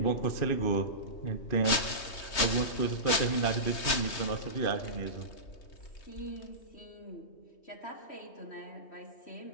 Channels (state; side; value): late; right; 3.2 ms